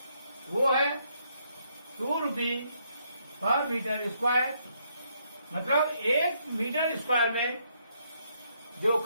वो है 2 रुपये पर मीटर स्क्वायर, मतलब 1 मीटर स्क्वायर में जो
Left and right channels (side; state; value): both; inverted; correlation -0.73